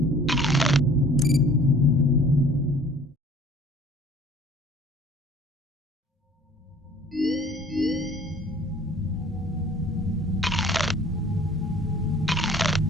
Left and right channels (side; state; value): both; normal; correlation 0.52